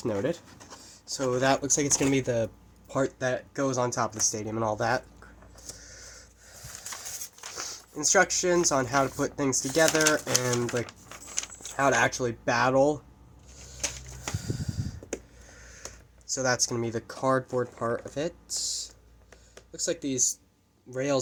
noted. So that looks like it's going to be the part that goes on top of the stadium and all that. Instructions on how to put things together and like how to actually battle. So that's going to be the cardboard part of it. Looks like these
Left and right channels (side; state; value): both; identical; correlation 1.00